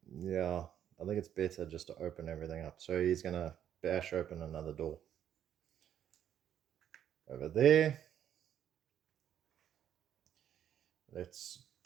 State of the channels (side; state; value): left; quieter; 10.0 dB